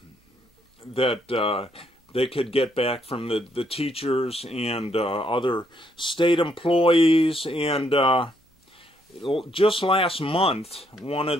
that they could get back from the teachers and other state employees. And just last month, one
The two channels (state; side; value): normal; both; correlation 0.73